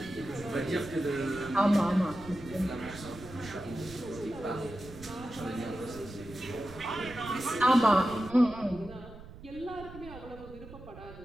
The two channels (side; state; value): right; noise; rumble, 16 dB below the sound